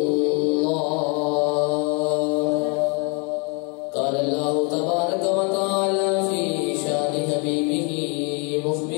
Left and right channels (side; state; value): right; quieter; 34.0 dB